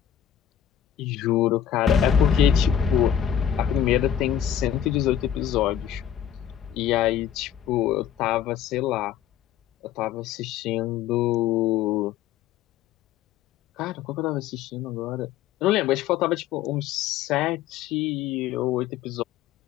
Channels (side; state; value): right; quieter; 9.7 dB